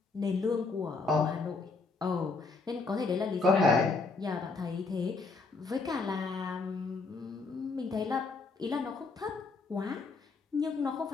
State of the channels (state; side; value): quieter; right; 4.1 dB